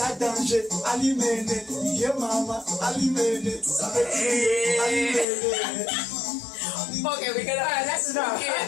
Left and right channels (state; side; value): drops out; right; at 5.2 s